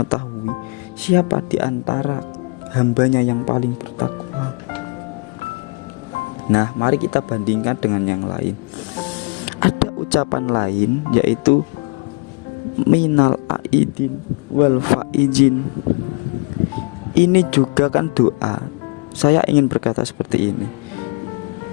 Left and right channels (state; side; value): quieter; right; 31.7 dB